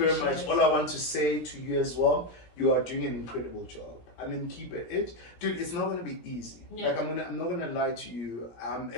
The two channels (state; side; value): late; right; 17 ms